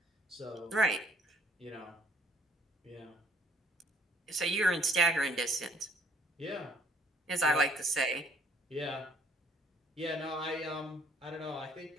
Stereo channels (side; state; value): both; normal; correlation 0.61